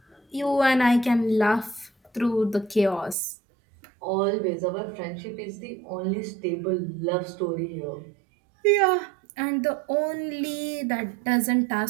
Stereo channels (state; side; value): drops out; left; at 3.2 s